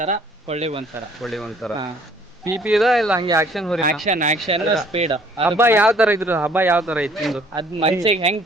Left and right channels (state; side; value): normal; both; correlation 0.58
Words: ಸರ, ಕೊಳ್ಳಿಗೆ 1 ಸರ. ಒಳ್ಳೆ ಒಂಥರ ಪಿ ಇದ ಇಲ್ಲ ಹಂಗೆ ಆಕ್ಷನ್ ಹೋರಿ? Action speed. ಹಬ್ಬ ಯಾವ ತರ ಇದ್ರು? ಹಬ್ಬ ಯಾವ ತರ ಇತ್ತು? ಅದ್ ಮನ್ಸಿಗೆ ಹೆಂಗ್